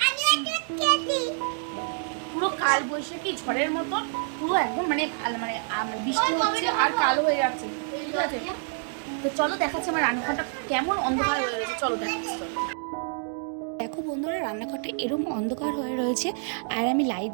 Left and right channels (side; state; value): left; silent; 60 dB below the other